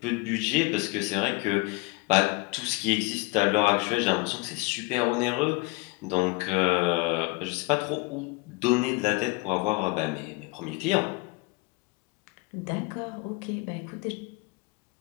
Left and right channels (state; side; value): quieter; right; 25.6 dB